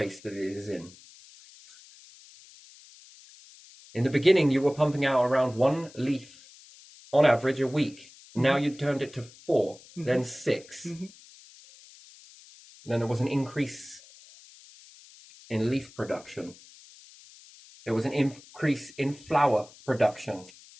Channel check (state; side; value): noise; left; hiss, 22 dB below the sound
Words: that it is in. In the beginning, you were pumping out around 1 leaf on average a week. Now you turned it to 4, then 6. Then there was an increase in leaf production. There was an increase in flower production.